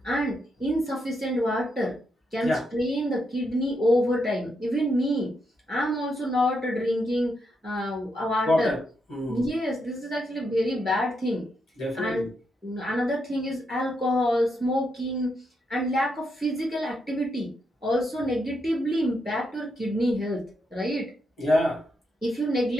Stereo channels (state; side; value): normal; both; correlation 0.81